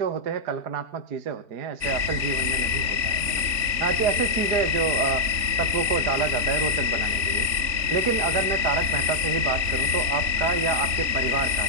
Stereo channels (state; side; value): late; left; 3.5 ms